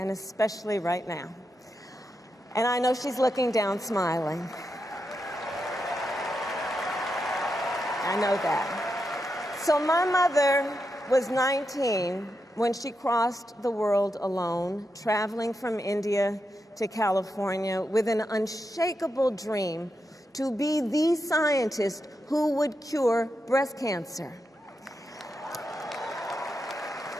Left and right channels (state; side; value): normal; both; correlation 0.86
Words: especially right now. And I know she's looking down, smiling. I know that. So my mother was 19 when she crossed the world alone, traveling from India to California with an unshakable dream to be the scientist who would cure breast cancer.